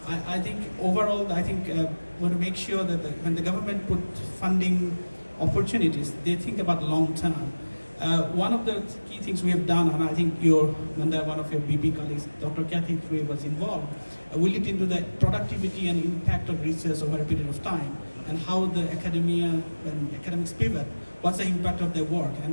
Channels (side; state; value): both; inverted; correlation -1.00